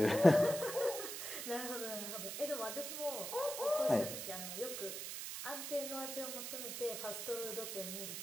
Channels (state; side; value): noise; right; hiss, 6 dB below the sound